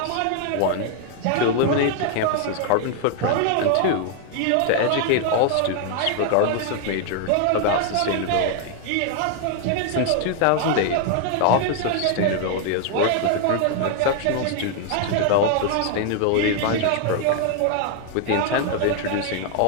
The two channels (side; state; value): both; different; correlation 0.00